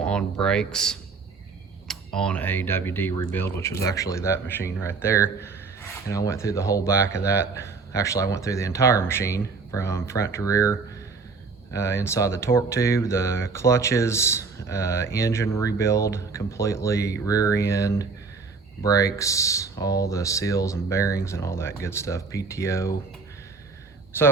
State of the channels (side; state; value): left; quieter; 4.6 dB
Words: on brakes on a WD rebuild, which was actually that machine right there. And I went through the whole back of that. Actually, I went through the entire machine from front to rear, inside the torque tube, the clutches, engine rebuild completely, rear end, brakes, all the seals and bearings and all that good stuff, PTO.